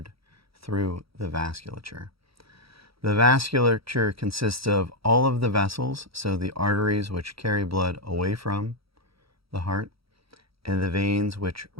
through the vasculature. The vasculature consists of all of the vessels, so the arteries which carry blood away from the heart, and the veins which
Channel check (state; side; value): late; left; 0.76 ms